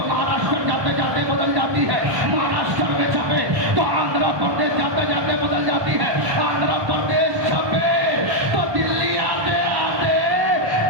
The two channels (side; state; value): left; late; 1.2 ms